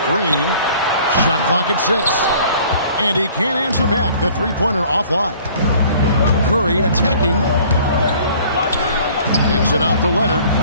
Green. Shot clock at 6. And he can't answer back. The three-pointer offline. Curry attacking. Kicks it out to Leonard.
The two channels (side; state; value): both; inverted; correlation -0.53